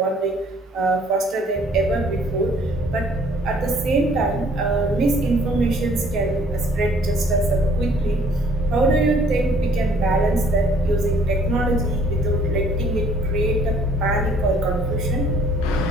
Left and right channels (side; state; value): both; normal; correlation 0.60